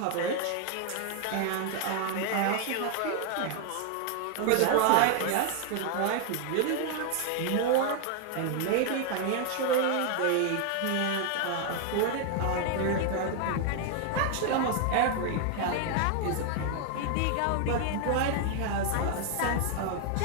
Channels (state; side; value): different; both; correlation 0.00